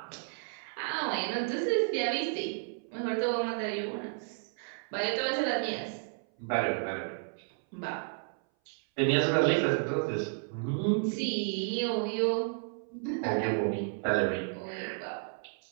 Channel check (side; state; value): left; silent; 56 dB below the other